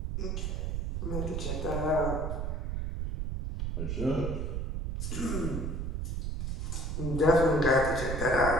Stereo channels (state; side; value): noise; right; rumble, 2 dB below the sound